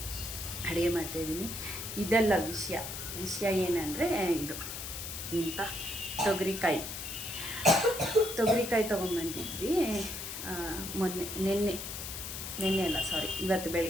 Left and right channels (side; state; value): left; noise; hiss, 7 dB below the sound